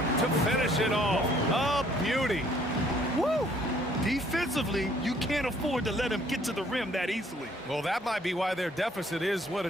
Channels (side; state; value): both; normal; correlation 0.62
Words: to finish it off. A beauty. Woo! Defensively, you can't afford to let him get to the rim that easily. Well, that might be why their deficit is what